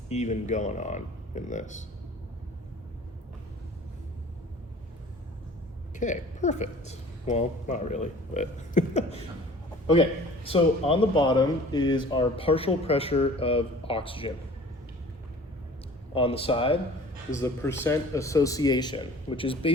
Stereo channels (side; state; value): both; normal; correlation 0.47